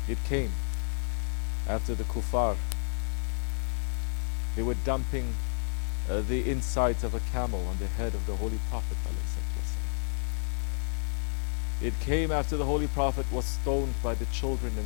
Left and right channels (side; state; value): right; silent; digital silence